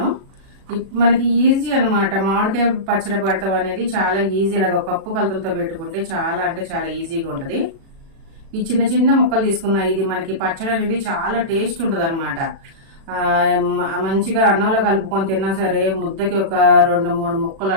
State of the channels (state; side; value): late; left; 37 ms